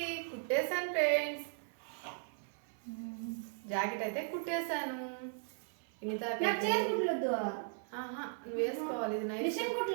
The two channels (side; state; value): left; silent; 53 dB below the other